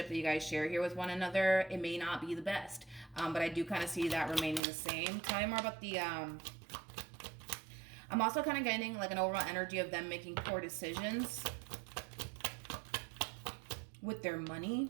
that you guys share here with one another. It may not be the best, but I do kind of see that remaining the same. Tell me more about the I'm also kind of getting like an overall energy of them making poor decisions with their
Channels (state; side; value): drops out; left; at 4.6 s